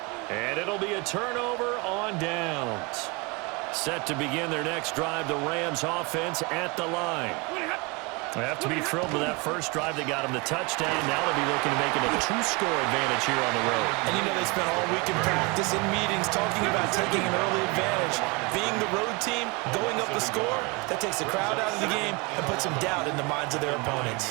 and it'll be a turnover on downs. Set to begin their next drive, the Rams offense at the line. They have to be thrilled with that first drive that got them the touchdown. Now they'll be looking to make it a 2-score advantage here on the road. And you know they spent all week in practice, in meetings, talking about taking an early advantage. Being the road team, going up the score, that takes the crowd out of the game and puts some doubt in the minds of their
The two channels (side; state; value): left; quieter; 27.7 dB